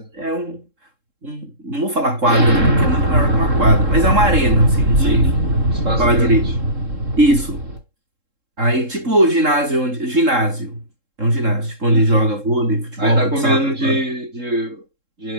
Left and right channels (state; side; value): late; left; 3.7 ms